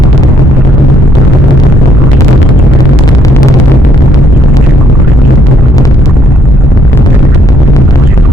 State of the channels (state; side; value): normal; both; correlation 0.69